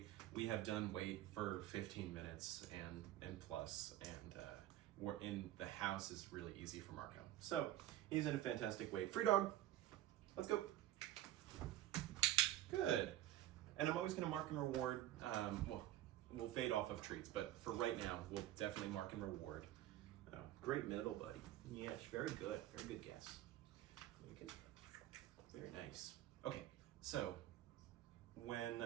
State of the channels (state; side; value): quieter; left; 13.5 dB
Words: We have done wait for 15 minutes and plus, and we're in the house is really easy for Marco. So he's in a fantastic wait. Free dog, let's go. Good. And I'm always gonna mark and reward, well, we'll fade off of treats, but for right now, we'll definitely mark and reward. Great middle, buddy. Yes, very good guess. Okay. Very nice. Okay, so